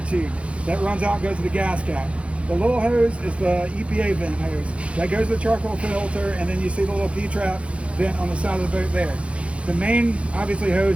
tube. That runs out and goes to the gas cap. The little hose is the EPA vent hose. That goes to the charcoal filter, and then you see the little P-trap vent on the side of the boat there. The main, obviously,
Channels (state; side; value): late; left; 0.061 ms